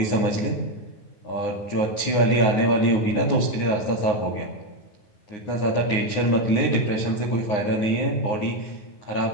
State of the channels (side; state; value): right; late; 9.7 ms